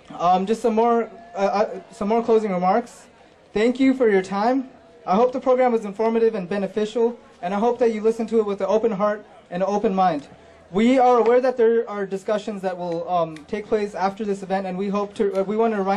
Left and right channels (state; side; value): identical; both; correlation 1.00